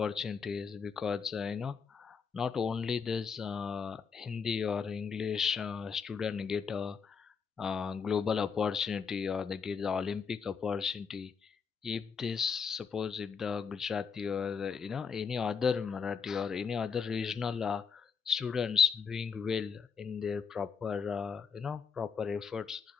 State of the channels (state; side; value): quieter; right; 6.0 dB